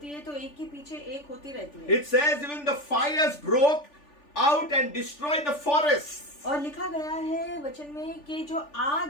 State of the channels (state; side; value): late; right; 3.4 ms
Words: है तो एक के पीछे एक होती रहती है। It says even the fires broke out and destroyed the forests. और लिखा गया है वचन में कि जो आग